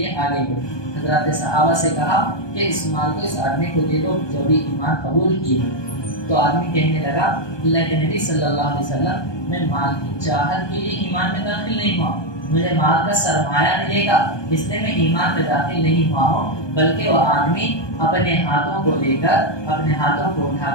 آگے بڑھے۔ حضرات صحابہ سے کہا کہ اس مال کو اس آدمی کو دے دو جو بھی ایمان قبول کیے۔ تو آدمی کہنے لگا اللہ کے نبی صلی اللہ علیہ وسلم میں مال کی چاہت کے لیے ایمان میں داخل نہیں ہوا، مجھے مال کا سرمایہ ملے گا اس لیے میں ایمان میں داخل نہیں ہوا ہوں، بلکہ وہ آدمی اپنے ہاتھوں کو لے کر اپنے ہاتھوں کو اٹھا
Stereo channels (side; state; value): right; late; 1.2 ms